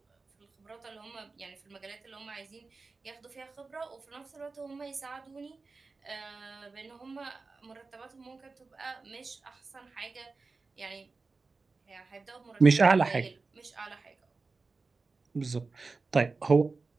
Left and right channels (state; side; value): quieter; left; 4.0 dB